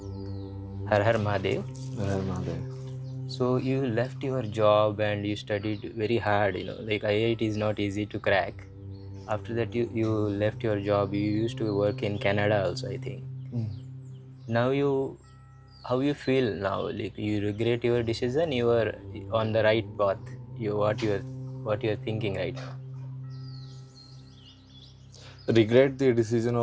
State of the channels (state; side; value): identical; both; correlation 1.00